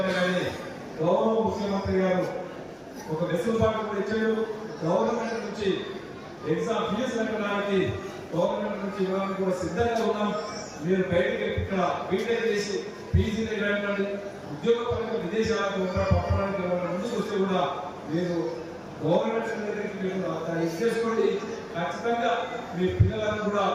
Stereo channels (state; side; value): identical; both; correlation 1.00